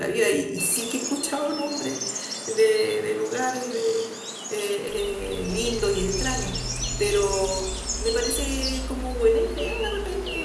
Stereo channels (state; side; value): identical; both; correlation 1.00